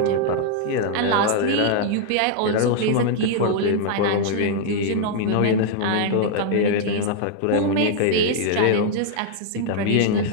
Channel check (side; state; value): both; different; correlation -0.01